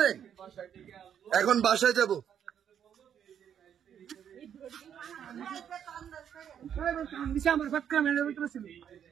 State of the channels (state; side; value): quieter; left; 8.9 dB